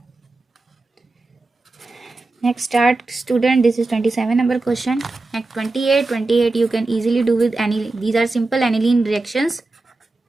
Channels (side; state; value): left; quieter; 3.2 dB